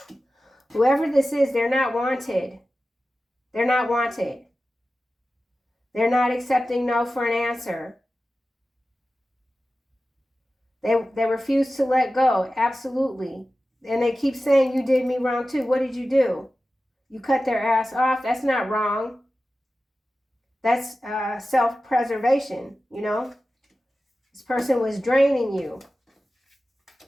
whoever this is, they're not wanted. They're not wanted. They're not accepting no for an answer. They refuse to let go, absolutely. And they keep saying, you did me wrong too. What did you do? You cut their ass off. That's not wrong. That's self-preservation, you know. This person was draining you,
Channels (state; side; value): normal; both; correlation 0.94